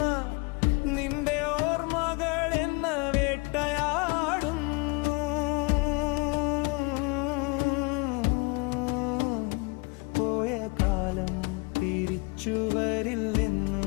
നിന്റെ ഓർമ്മകൾ എന്നെ വേട്ടയാടുന്നു. പോയ കാലം തിരിച്ചു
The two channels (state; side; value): quieter; right; 28.8 dB